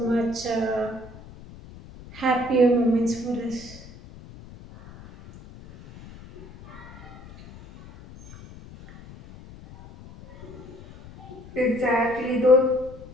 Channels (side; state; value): left; noise; rumble, 18 dB below the sound